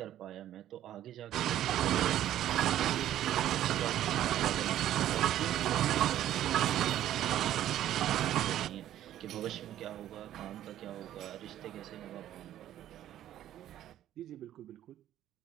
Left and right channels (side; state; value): left; quieter; 12.2 dB